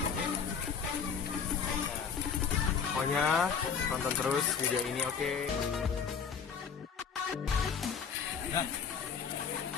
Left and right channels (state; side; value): quieter; right; 6.5 dB